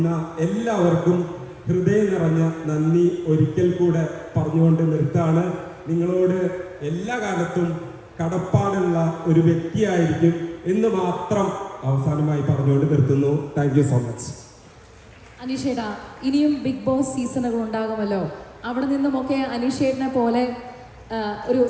എല്ലാവർക്കും ഹൃദയം നിറഞ്ഞ നന്ദി ഒരിക്കൽ കൂടെ പറഞ്ഞുകൊണ്ട് നിർത്താണ്. നിങ്ങളോട് എല്ലാ കാലത്തും കടപ്പാടുള്ള ഒരു വ്യക്തിയായിരിക്കും എന്ന് മാത്രം അവസാനമായി പറഞ്ഞുകൊണ്ട് നിർത്തുന്നു. Thank you so much. അനീഷേട്ടാ, ഇനിയും ബിഗ് ബോസ് സീസണുകൾ ഉണ്ടാകുമല്ലോ. അവിടെ നിന്നുമൊക്കെ അനീഷേട്ടനെ പോലെ ഒരു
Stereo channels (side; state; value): both; identical; correlation 1.00